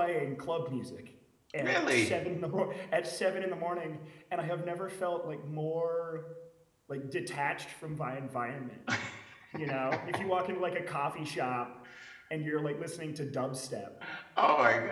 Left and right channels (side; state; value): both; identical; correlation 1.00